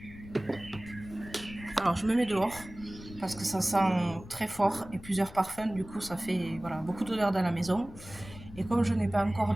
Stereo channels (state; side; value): noise; left; rumble, 16 dB below the sound